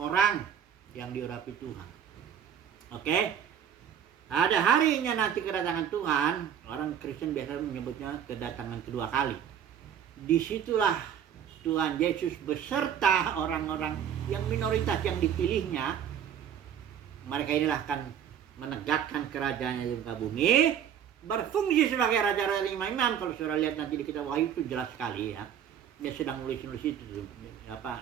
yang diurapi Tuhan. Oke? Ada harinya nanti kedatangan Tuhan, orang Kristen biasa menyebutnya kedatangan kedua kali. Disitulah Tuhan Yesus beserta orang-orang yang minoritas yang dipilihnya, mereka inilah akan menegakkan kerajaannya di muka bumi, berfungsi sebagai raja-raja imam-imam. Kalau saudara lihat nanti di kitab Wahyu itu jelas sekali ya. Dia sedang nulis itu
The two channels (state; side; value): quieter; left; 9.0 dB